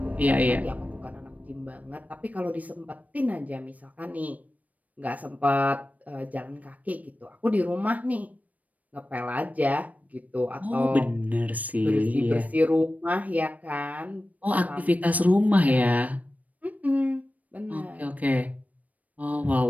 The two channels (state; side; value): late; left; 0.072 ms